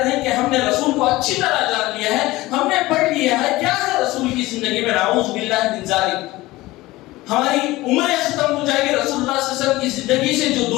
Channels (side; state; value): right; quieter; 18.9 dB